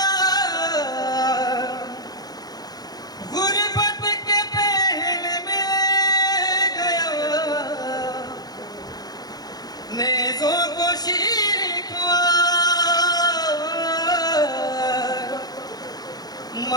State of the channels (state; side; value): late; right; 0.19 ms